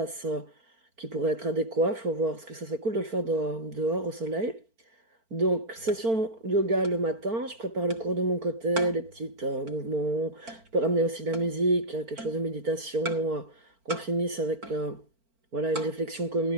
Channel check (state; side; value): late; left; 4.4 ms